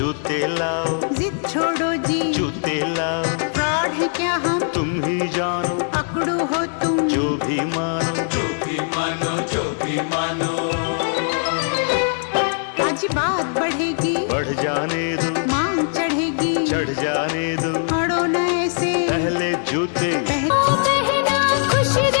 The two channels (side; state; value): right; silent; digital silence